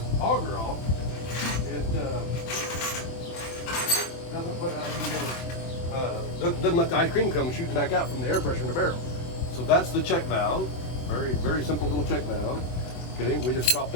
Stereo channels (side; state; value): right; late; 24 ms